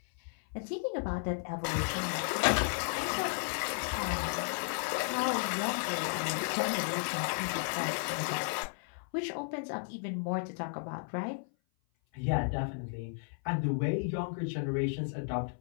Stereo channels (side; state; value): right; silent; 55 dB below the other